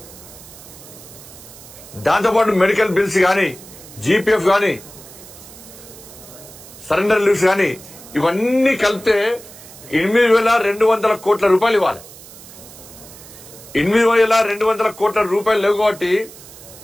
దాంతోపాటు మెడికల్ బిల్స్ గాని, జీపీఎఫ్ గాని, సరెండర్ లీవ్స్ గాని ఇవన్నీ కలిపితే 8,200 కోట్ల రూపాయలు ఇవ్వాలి. 8,200 కోట్ల రూపాయలు లేవు కాబట్టి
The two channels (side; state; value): right; noise; hiss, 18 dB below the sound